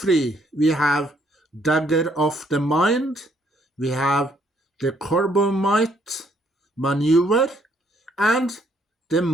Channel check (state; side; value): normal; both; correlation 0.68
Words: we have Dagger of the Mind, we have The Corbomite Maneuver, and The